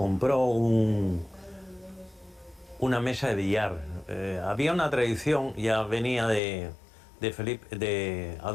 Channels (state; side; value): drops out; right; at 6.4 s